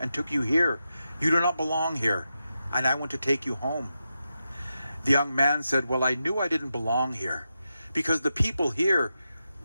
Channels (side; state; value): both; inverted; correlation -0.89